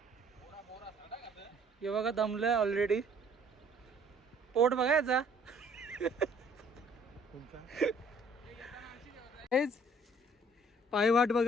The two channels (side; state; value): both; normal; correlation 0.58